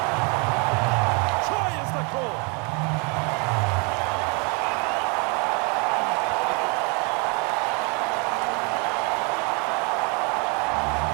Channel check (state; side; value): quieter; left; 33.4 dB